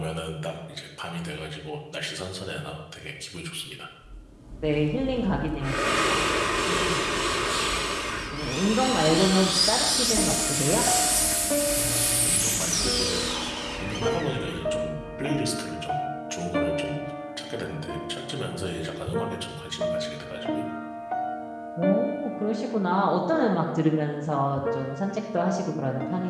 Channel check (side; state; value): both; identical; correlation 1.00